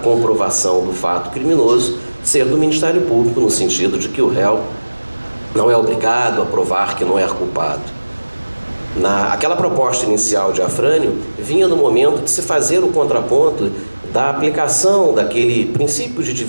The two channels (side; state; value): both; inverted; correlation -1.00